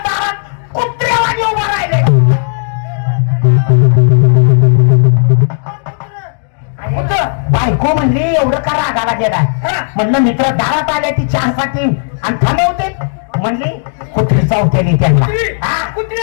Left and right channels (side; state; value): right; silent; digital silence